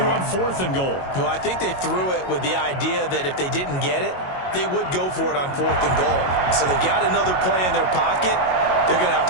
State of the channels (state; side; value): late; right; 22 ms